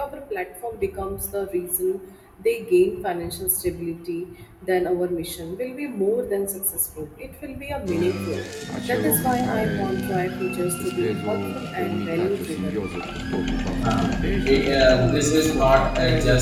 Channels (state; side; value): identical; both; correlation 1.00